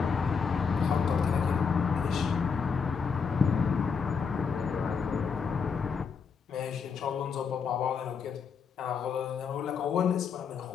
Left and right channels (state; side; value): quieter; right; 5.9 dB